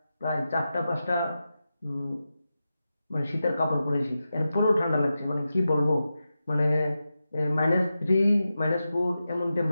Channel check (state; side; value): inverted; both; correlation -0.91